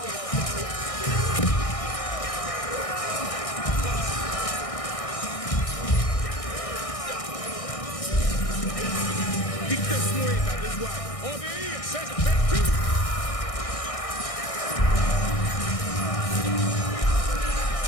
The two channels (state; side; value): late; right; 1.6 ms